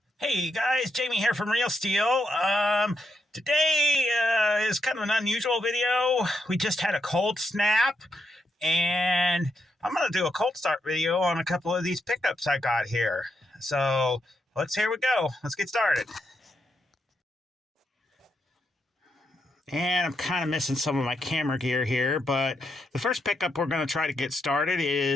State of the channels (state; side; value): normal; both; correlation 0.81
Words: Hey guys, Jamie here from Real Steel. Today is kind of an unusual video. We just had a cold snap, and I'm going to do a cold start video on a couple of these pickups I got here. So here we go. Let's get started. And I'm kind of missing some of my camera gear here, but the first pickup we're going to try to get started